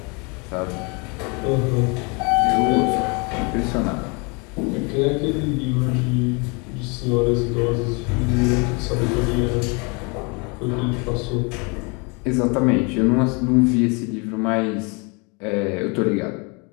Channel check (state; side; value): quieter; right; 31.1 dB